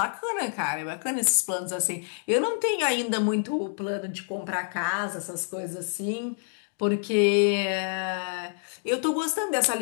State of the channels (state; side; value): silent; right; digital silence